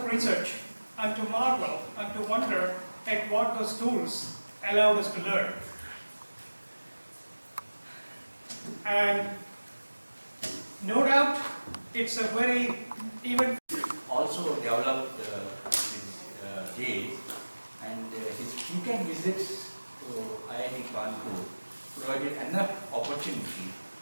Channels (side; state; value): both; inverted; correlation -1.00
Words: research and to marvel and to wonder at what those tools allowed us to learn. And no doubt, it's a very even also developed his days, and his frequent visits to IIT Kanpur provided enough opportunity